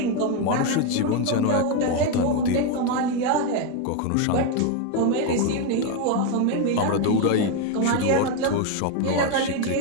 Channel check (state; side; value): different; both; correlation 0.02